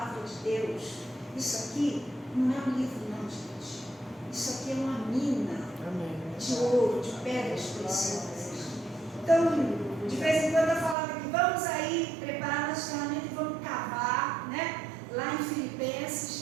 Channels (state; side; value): drops out; left; at 11.0 s